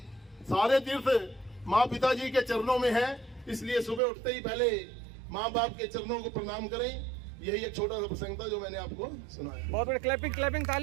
सारे तीर्थ माँ पिताजी के चरणों में है। इसलिए सुबह उठते ही पहले माँ बाप के चरणों को प्रणाम करें। यही एक छोटा सा प्रसंग था जो मैंने आपको सुनाया। बहुत बड़े क्लैपिंग क्लैपिंग,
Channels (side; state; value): left; drops out; at 4.0 s